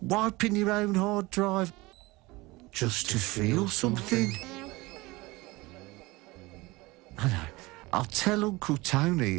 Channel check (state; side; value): quieter; left; 21.8 dB